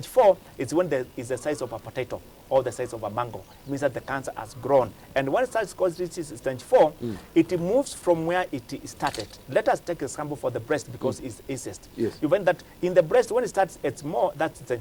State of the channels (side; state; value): both; identical; correlation 1.00